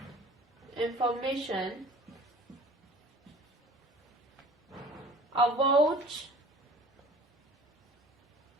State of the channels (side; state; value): both; normal; correlation 0.46